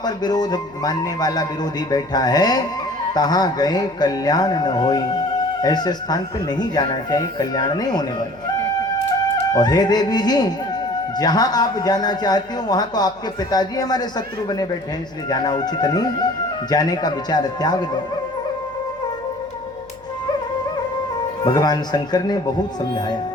विरोध मानने वाला विरोधी बैठा है, तहां गए कल्याण न होई। ऐसे स्थान पे नहीं जाना चाहिए, कल्याण नहीं होने वाला। और हे देवी जी, जहां आप जाना चाहती हो वहां तो आपके पिताजी हमारे शत्रु बने बैठे हैं, इसलिए जाना उचित नहीं। जाने का विचार त्याग दो। भगवान शंकर ने बहुत समझाया,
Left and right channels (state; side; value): noise; left; hum, 27 dB below the sound